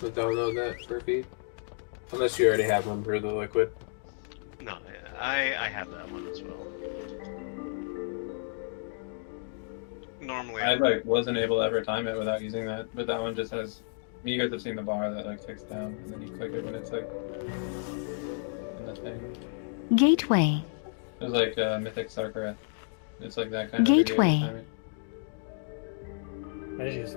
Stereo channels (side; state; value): right; silent; 57 dB below the other